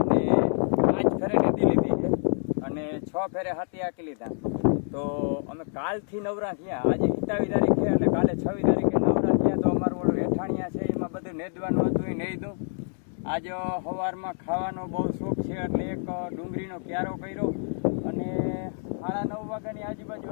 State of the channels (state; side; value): silent; right; 60 dB below the other